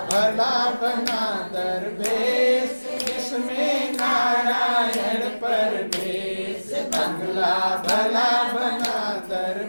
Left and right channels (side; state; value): both; inverted; correlation -1.00